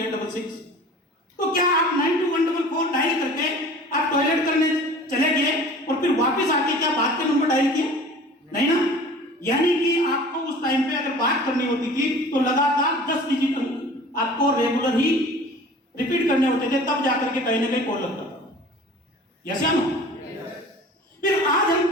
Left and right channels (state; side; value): normal; both; correlation 0.44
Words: तो क्या आप 921444 डायल करके आप टॉयलेट करने चले गए और फिर वापस आके क्या बात के नंबर डायल किए? नहीं ना। यानी कि आपको उस टाइम पे अगर बात करनी होती थी तो लगातार 10 डिजिट आपको रेगुलर ही रिपीट करने होते थे, तब जाकर के कहीं ना कहीं कॉल लगता था। यस या नो? फिर आज हम